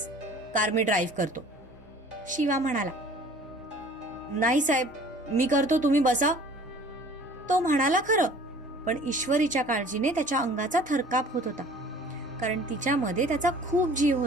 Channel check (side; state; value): both; normal; correlation 0.49